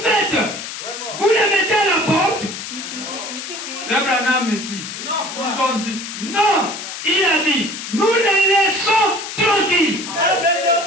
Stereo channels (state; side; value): noise; left; hiss, 8 dB below the sound